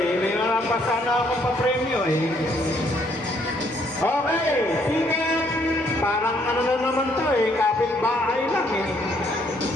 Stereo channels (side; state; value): both; normal; correlation 0.68